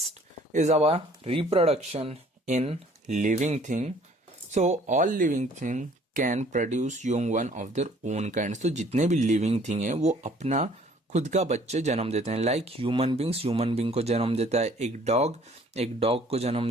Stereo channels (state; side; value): normal; both; correlation 0.56